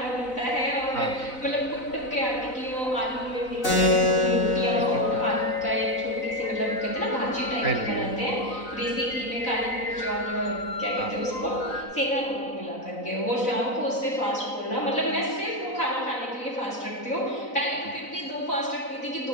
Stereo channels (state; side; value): late; right; 4.0 ms